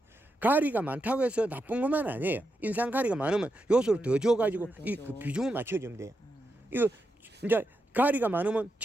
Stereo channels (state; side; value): normal; both; correlation 0.86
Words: 가리가 많다고 해서 나쁜 것만 아니에요. 인상 가리가 많으면 요소를 더 줘가지고 이 그 비중을 맞춰주면 돼요. 이거 이제 가리가 많으면